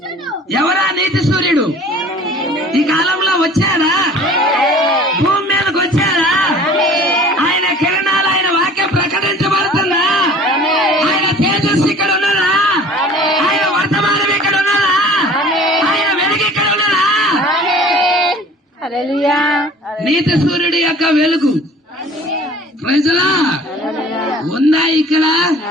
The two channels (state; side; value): normal; both; correlation 0.47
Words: ఎవరా నీతి సూర్యుడు? ఈ కాలంలో వచ్చారా? భూమి మీదకి వచ్చారా? ఆయన కిరణాలు, ఆయన వాక్యం ప్రకటించబడుతుందా? ఆయన తేజస్సు ఇక్కడ ఉన్నదా? ఆయన వర్తమానం ఇక్కడ ఉన్నదా? ఆయన వెలుగు ఇక్కడ ఉన్నదా? నీతి సూర్యుడి యొక్క వెలుగు ప్రజలా ఉందా ఇక్కడ?